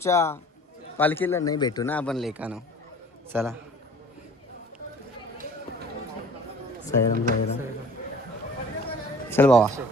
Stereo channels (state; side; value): normal; both; correlation 0.49